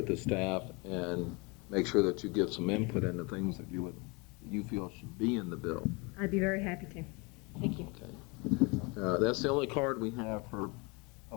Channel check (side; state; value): right; quieter; 27.9 dB